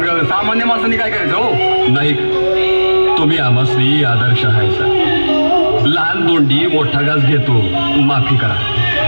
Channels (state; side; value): inverted; both; correlation -1.00